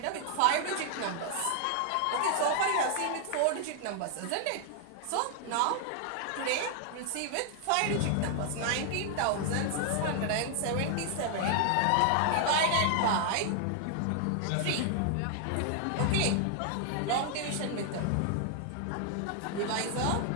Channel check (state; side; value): different; both; correlation 0.00